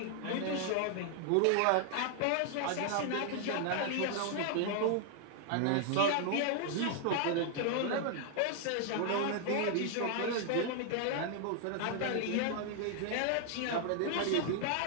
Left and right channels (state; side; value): different; both; correlation 0.00